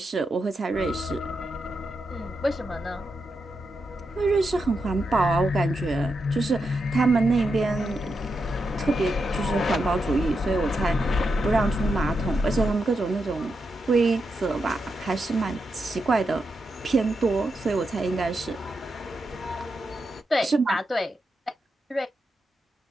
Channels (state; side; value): normal; both; correlation 0.85